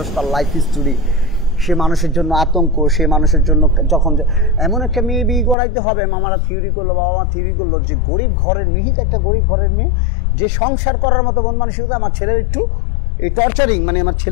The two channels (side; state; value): right; drops out; at 5.6 s